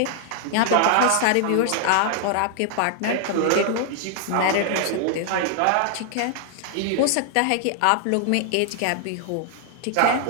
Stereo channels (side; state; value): both; different; correlation 0.00